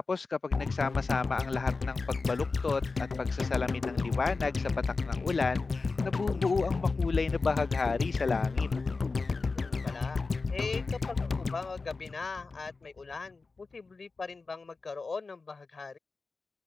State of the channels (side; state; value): right; quieter; 4.1 dB